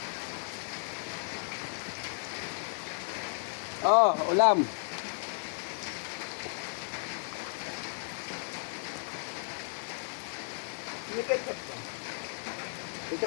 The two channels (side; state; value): right; silent; 55 dB below the other